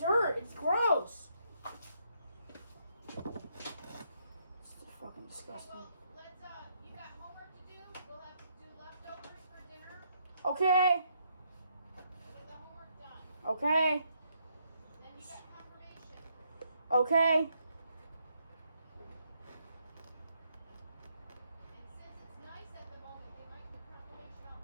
It's gross. It's fucking disgusting. Okay. Okay. Okay.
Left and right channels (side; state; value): both; inverted; correlation -0.75